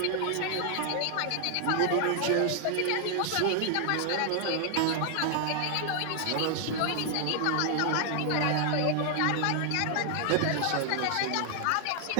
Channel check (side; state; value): both; different; correlation 0.00